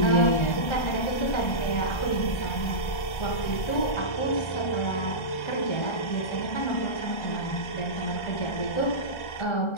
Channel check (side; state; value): right; late; 1.3 ms